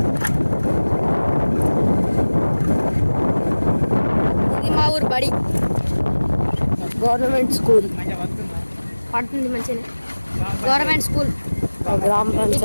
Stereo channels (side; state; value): both; inverted; correlation -1.00